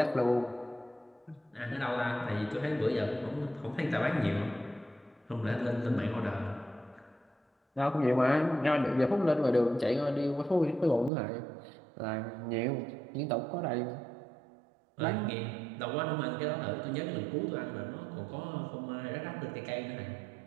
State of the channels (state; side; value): drops out; left; at 11.1 s